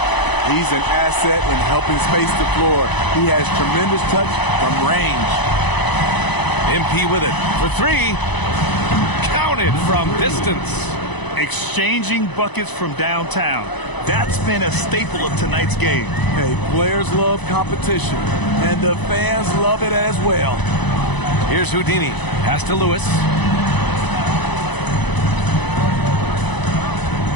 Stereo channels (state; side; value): late; right; 1.0 ms